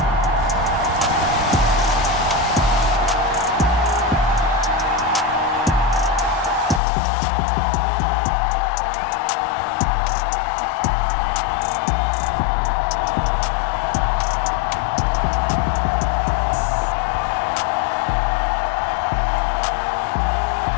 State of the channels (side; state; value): right; drops out; at 6.8 s